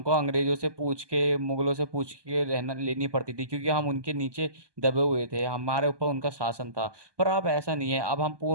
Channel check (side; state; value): left; late; 1.2 ms